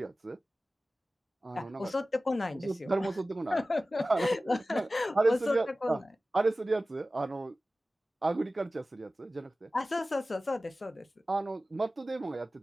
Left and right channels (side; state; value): both; normal; correlation 0.96